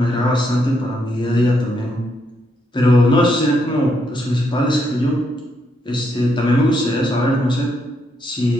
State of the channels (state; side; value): normal; both; correlation 0.77